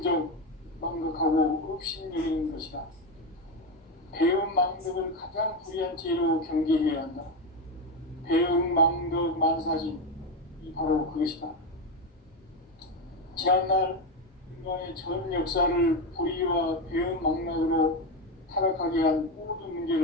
망각하고 업신여기는 것이다. 배음 망덕을 가장 불의한 죄로 경계해야 한다. 배음 망덕 만사진, 이 바로 그것이다. 지난날 인간의 전 역사를 불의와 배음 망락으로 타락하게 한 모든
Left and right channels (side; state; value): both; normal; correlation 0.13